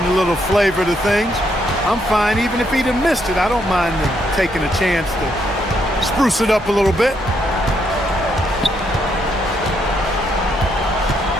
little flavor to things. I'm fine even if he'd have missed it. I don't mind them taking a chance to spruce it up a little bit.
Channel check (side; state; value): both; normal; correlation 0.75